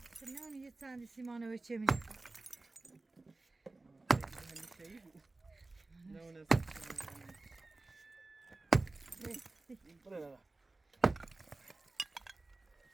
نه اون یه چندی سیمانه و چه میده Şeyi bu. Ne o ne? Buraya bak.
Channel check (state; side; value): quieter; left; 3.2 dB